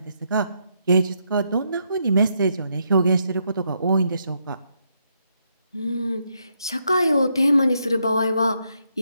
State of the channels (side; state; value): both; inverted; correlation -0.78